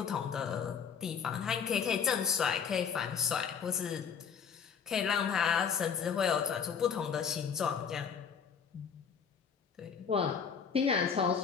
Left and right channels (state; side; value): quieter; right; 6.8 dB